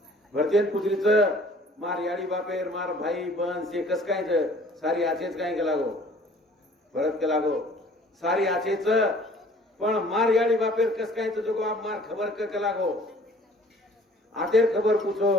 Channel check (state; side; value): normal; both; correlation 0.53